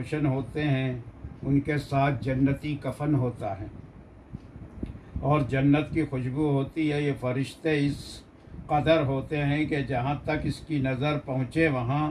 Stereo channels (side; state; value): both; identical; correlation 1.00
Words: ہوتے ہیں۔ ان کے ساتھ جنتی کفن ہوتا ہے اور جنت کی خوشبو ہوتی ہے۔ یہ فرشتے اس قدر ہوتے ہیں کہ جہاں تک اس کی نظر پہنچے وہاں